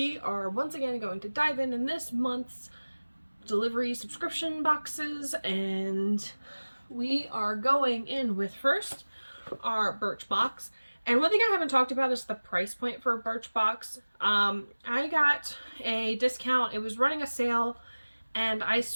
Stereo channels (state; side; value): inverted; both; correlation -1.00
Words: are once again going to dive in this month's delivery subscription boxes, and we are going in with first our Birchbox. And one thing I haven't talked about is the price point for a Birchbox. I got a discount. It was running a sale, and I